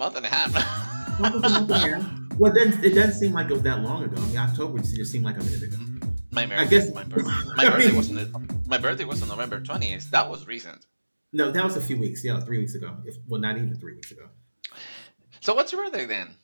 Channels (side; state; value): both; inverted; correlation -1.00